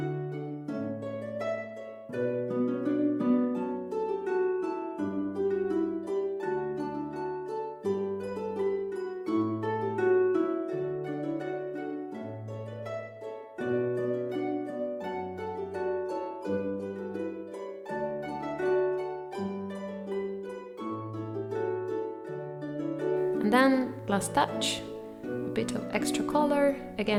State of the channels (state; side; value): identical; both; correlation 1.00